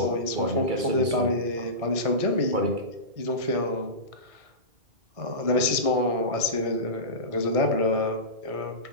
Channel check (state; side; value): late; left; 2.3 ms